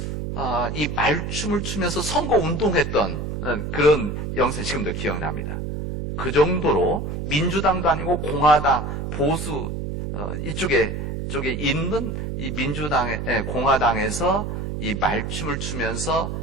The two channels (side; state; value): right; noise; hum, 4 dB below the sound